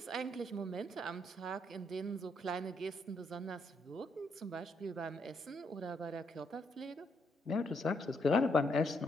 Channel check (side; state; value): both; normal; correlation 0.75